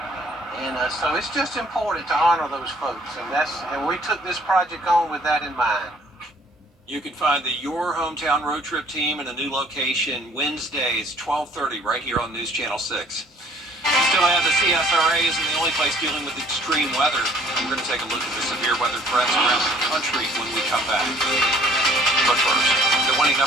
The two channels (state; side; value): normal; both; correlation 0.57